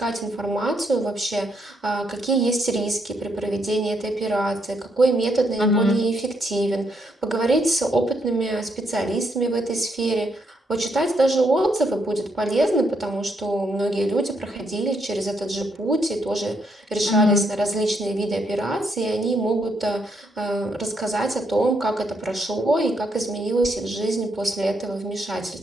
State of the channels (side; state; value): both; normal; correlation 0.76